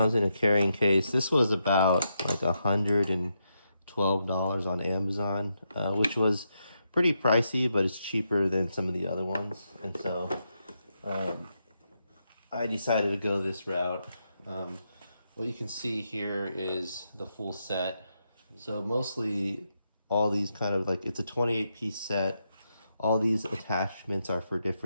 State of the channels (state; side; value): inverted; both; correlation -0.83